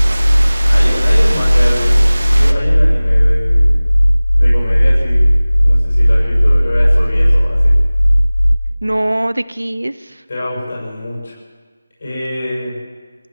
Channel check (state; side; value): inverted; both; correlation -0.99